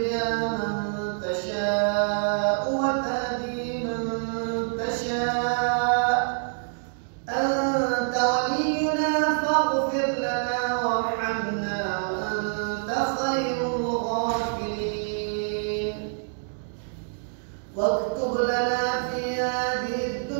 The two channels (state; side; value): silent; left; digital silence